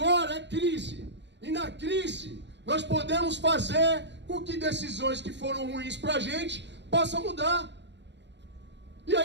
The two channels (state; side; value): late; left; 0.51 ms